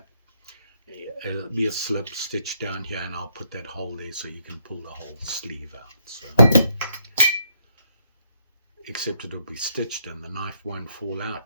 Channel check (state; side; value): inverted; both; correlation -0.75